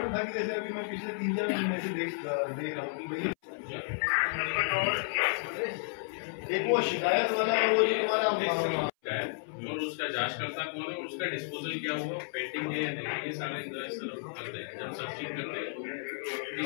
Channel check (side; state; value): right; silent; 56 dB below the other